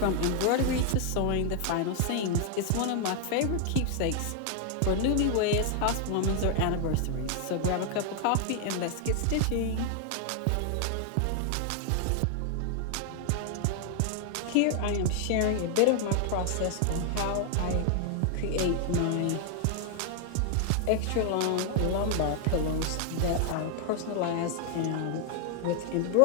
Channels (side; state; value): both; different; correlation 0.00